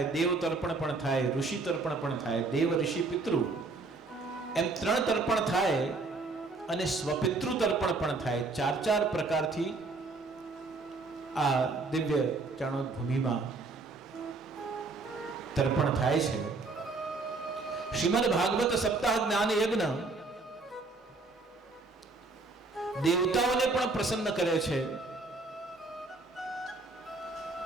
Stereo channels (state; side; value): quieter; left; 3.6 dB